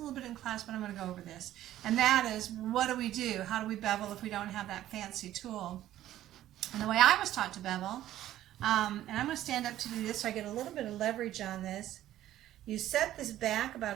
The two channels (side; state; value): left; quieter; 13.3 dB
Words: bit in class, but I'm going to go over this. And that is, what do we do? How do we bevel if we don't have that fancy tool? And the way I was taught to bevel, and I'm going to stand up to do this so I get a little bit of leverage on this. You set this back